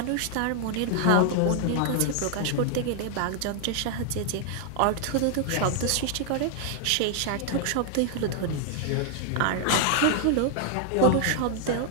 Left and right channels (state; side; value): different; both; correlation 0.00